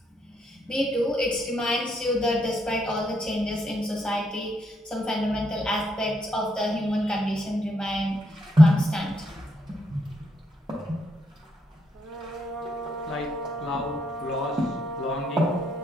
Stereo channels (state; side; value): normal; both; correlation 0.76